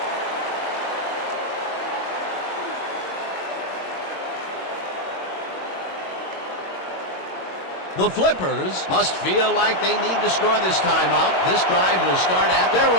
The Flippers must feel like they need to score this timeout. This drive will start at their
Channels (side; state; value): right; late; 22 ms